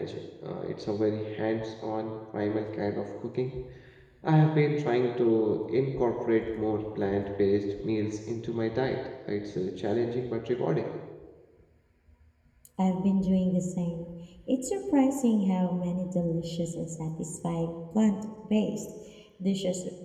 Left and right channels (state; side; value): identical; both; correlation 1.00